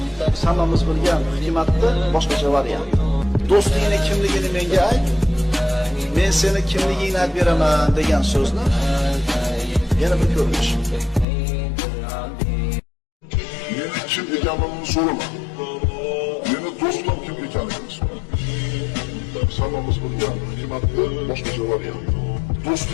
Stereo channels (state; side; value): drops out; right; at 11.2 s